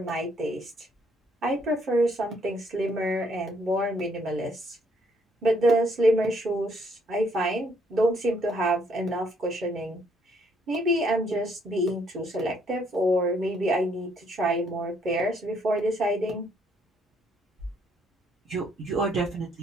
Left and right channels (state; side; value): normal; both; correlation 0.68